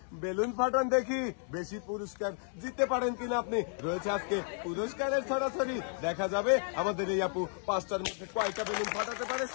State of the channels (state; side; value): silent; right; 56 dB below the other